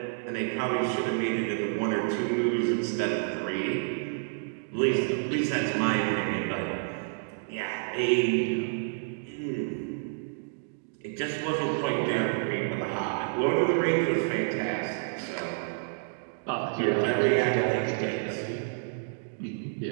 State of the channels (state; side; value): silent; left; digital silence